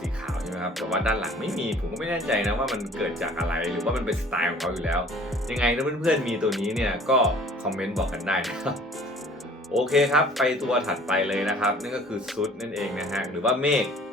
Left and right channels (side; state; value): both; normal; correlation 0.51